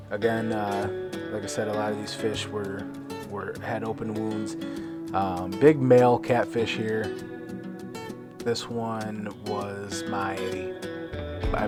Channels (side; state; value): both; identical; correlation 1.00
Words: Again, like I said, a lot of these fish had open wounds. Big male catfish here. This one was I